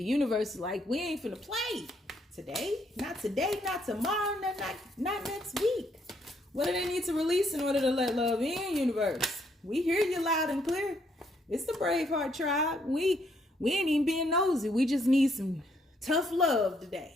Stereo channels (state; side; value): normal; both; correlation 0.71